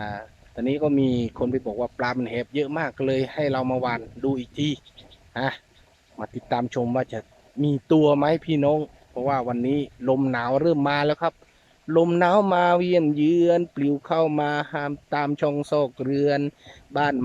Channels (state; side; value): identical; both; correlation 1.00